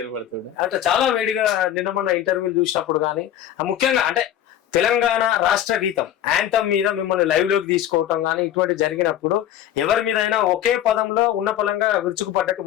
అంటే చాలా వేడిగా. నిన్న మొన్న ఇంటర్వ్యూలు చూసినప్పుడు కానీ ముఖ్యంగా అంటే తెలంగాణ రాష్ట్ర గీతం యాంథమ్ మీద మిమ్మల్ని లైవ్ లోకి తీసుకోవటం కానీ ఇటువంటి జరిగినప్పుడు ఎవరి మీదైనా ఒకే పదంలో ఉన్న పలంగా విరుచుకుపడ్డట్టు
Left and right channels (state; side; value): quieter; right; 11.1 dB